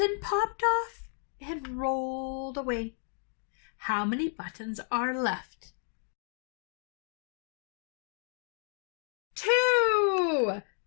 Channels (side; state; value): right; silent; 56 dB below the other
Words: popped off and rolled away. How many buttons are left? 2!